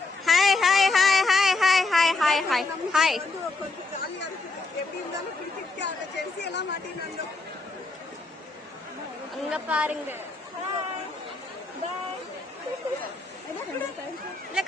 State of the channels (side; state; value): right; quieter; 3.6 dB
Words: hi hi hi hi hi hi hi hi hi. கொஞ்சம் ஜாலியாக இருக்குது. எப்படி இருந்தாலும் கிரிக்கெட் ஜெர்சி எல்லாம் மாட்டினாங்க. அங்க பாருங்க. இல்ல